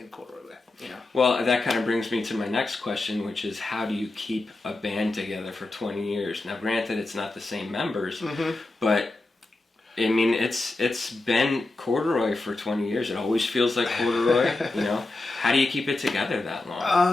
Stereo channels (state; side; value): quieter; right; 3.0 dB